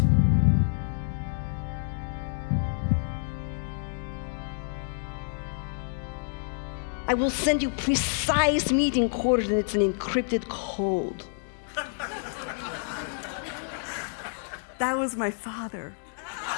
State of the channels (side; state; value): right; silent; digital silence